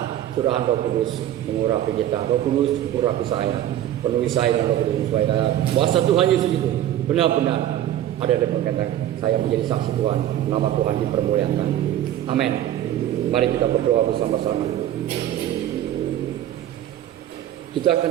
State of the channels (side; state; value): left; quieter; 12.1 dB